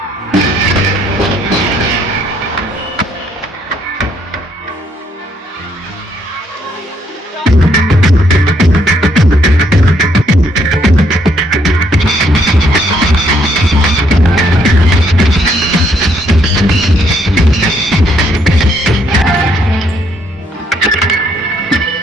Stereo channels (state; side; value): normal; both; correlation 0.70